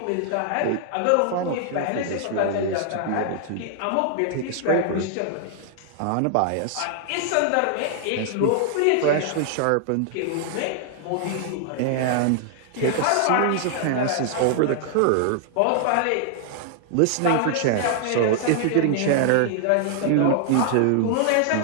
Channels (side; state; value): both; different; correlation 0.00